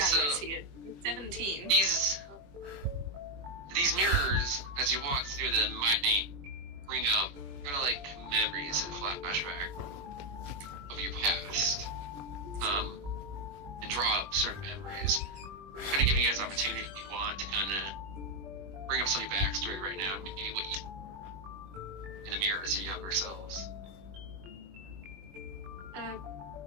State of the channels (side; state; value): left; late; 21 ms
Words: So- here. 17. these mirrors, as you walk through them, might bring up kind of like memories and flashback of your past, and draw up certain memories. Kind of giving you guys opportunity if you want to kind of bring up some of your backstory right now, and maybe what you in the mirror as your younger selves.